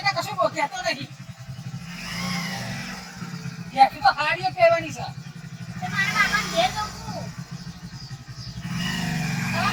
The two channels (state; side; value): identical; both; correlation 1.00